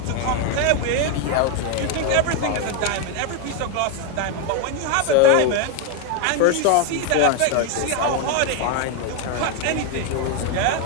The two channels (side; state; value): both; different; correlation 0.01